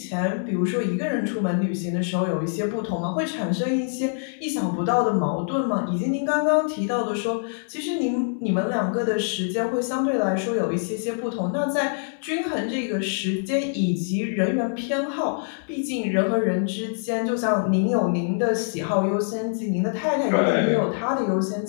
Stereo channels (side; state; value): right; silent; 62 dB below the other